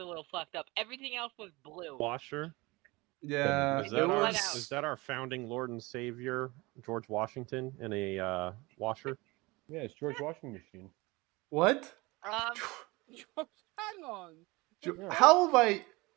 a little fucked up. Everything else was blue. Washer. Yeah, Is that our founding Lord and Savior George Washington in a washer? Yeah, it's George Washington machine. What? Hang on. How have I,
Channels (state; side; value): quieter; left; 23.1 dB